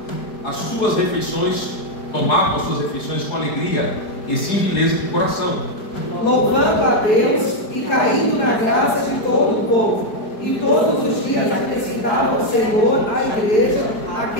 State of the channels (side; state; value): right; late; 4.7 ms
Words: as suas refeições, tomavam as suas refeições com alegria e singeleza de coração, Louvando a Deus e caindo na graça de todo o povo. E todos os dias acrescentava o Senhor à igreja